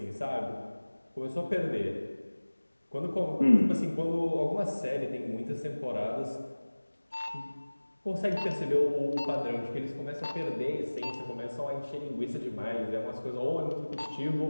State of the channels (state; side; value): inverted; both; correlation -1.00